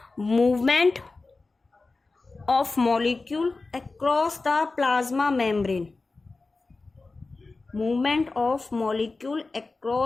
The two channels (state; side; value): quieter; right; 3.6 dB